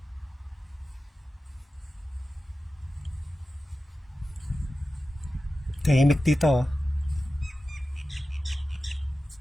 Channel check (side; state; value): both; normal; correlation 0.94